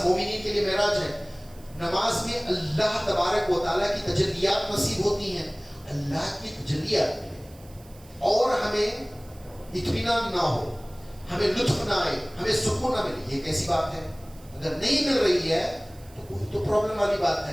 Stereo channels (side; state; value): right; noise; hiss, 25 dB below the sound